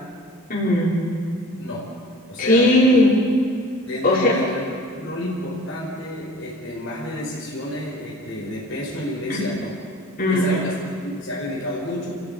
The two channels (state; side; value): normal; both; correlation 0.44